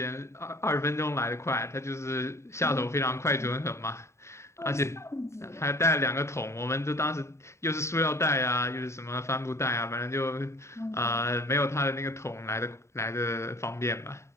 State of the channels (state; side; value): late; right; 0.14 ms